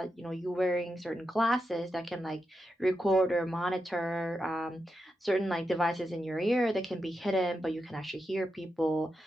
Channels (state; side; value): normal; both; correlation 0.87